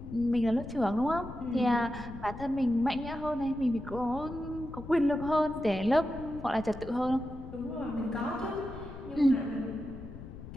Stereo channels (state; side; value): noise; left; rumble, 13 dB below the sound